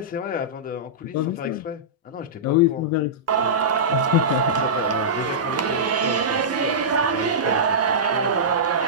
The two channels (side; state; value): both; normal; correlation -0.15